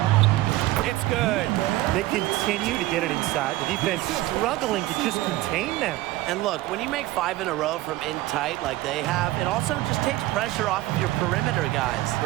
It's good. They continue to get it inside. The defense struggling to just contain them. And look, when you make 5 in a row from in tight like they have, it also just takes pressure off of your perimeter guys.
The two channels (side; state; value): left; quieter; 17.2 dB